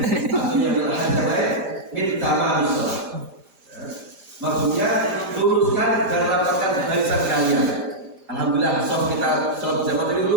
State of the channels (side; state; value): left; late; 5.0 ms